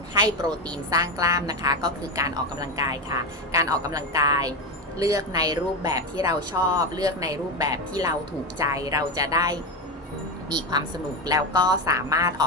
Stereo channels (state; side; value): normal; both; correlation 0.15